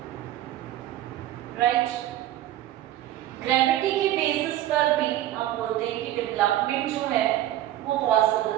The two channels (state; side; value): quieter; left; 13.6 dB